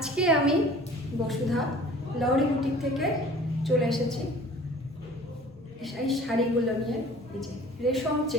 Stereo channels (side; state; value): both; normal; correlation 0.47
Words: আমি বসুধা লহরি বুটিক থেকে চলে এসেছি এই শাড়িগুলো নিয়ে। এই যে